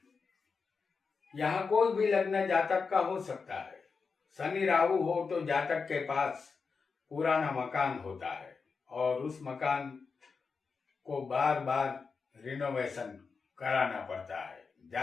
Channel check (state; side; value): quieter; right; 5.0 dB